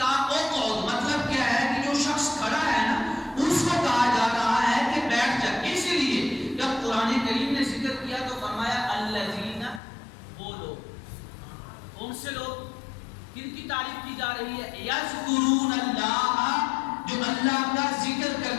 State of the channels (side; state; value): right; drops out; at 9.8 s